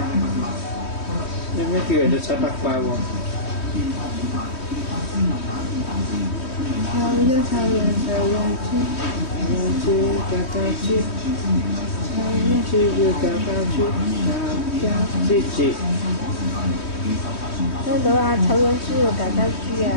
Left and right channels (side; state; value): right; late; 3.2 ms